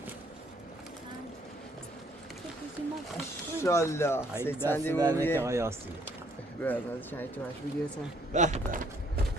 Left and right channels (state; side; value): normal; both; correlation 0.65